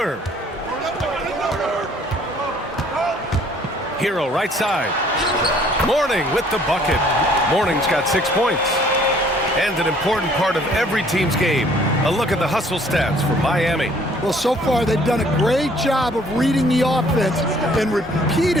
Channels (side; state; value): both; normal; correlation 0.59